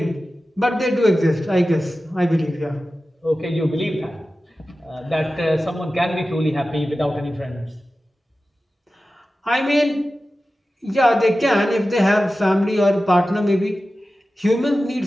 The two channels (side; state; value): both; normal; correlation 0.94